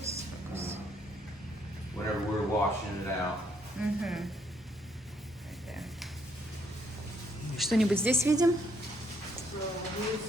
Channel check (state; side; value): normal; both; correlation 0.71